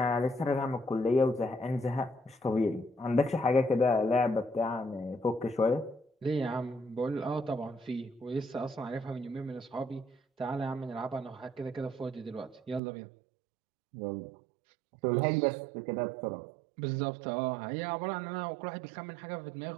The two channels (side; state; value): left; drops out; at 12.8 s